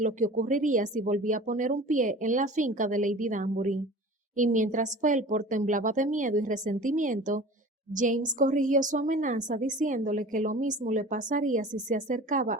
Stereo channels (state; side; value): normal; both; correlation 0.40